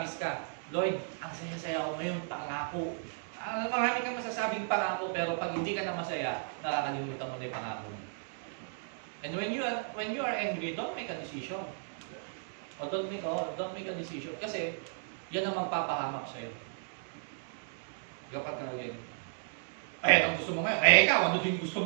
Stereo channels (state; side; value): silent; left; digital silence